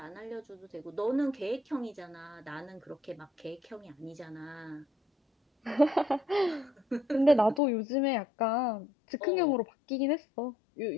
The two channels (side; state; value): right; drops out; at 7.6 s